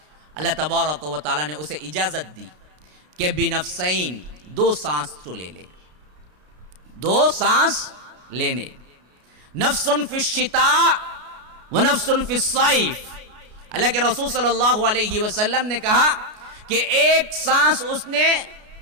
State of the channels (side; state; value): left; late; 33 ms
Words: اللہ تبارک و تعالی نے اسے اجازت دی کہ بنفسین، 2 سانس تو لے لے، 2 سانس لینے. نفس فی الشتاء و نفس فی الصیف. اللہ کے رسول صلی اللہ علیہ وسلم نے کہا کہ ایک سانس اس نے